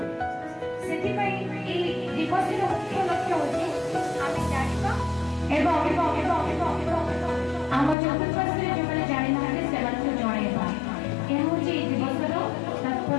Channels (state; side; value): drops out; right; at 8.0 s